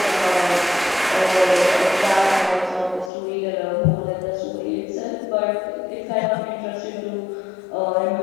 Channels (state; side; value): drops out; right; at 3.1 s